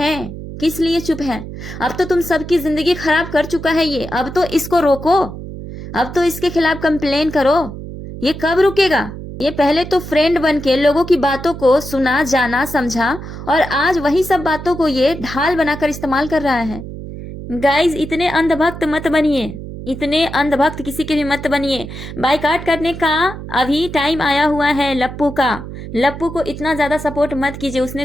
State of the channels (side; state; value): right; noise; hum, 10 dB below the sound